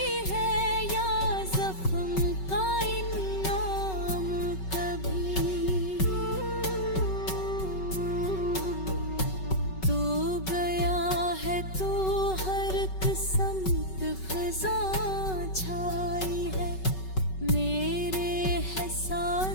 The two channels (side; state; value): right; late; 5.3 ms